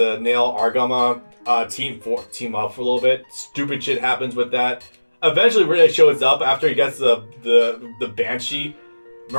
Nail Argama team up for a little bit. Stupid shit happens with that. Eventually, Marida shows up after he gets the Banshee.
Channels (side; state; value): both; inverted; correlation -1.00